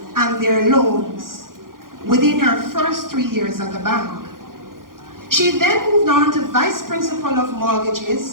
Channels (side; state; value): left; late; 0.91 ms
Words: and their loans within her first 3 years at the bank. She then moved on to vice principal of